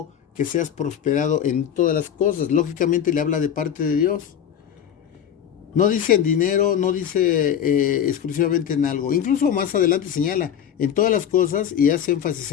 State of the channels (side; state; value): right; quieter; 9.1 dB